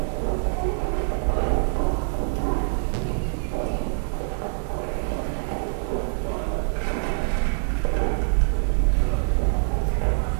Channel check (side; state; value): left; silent; digital silence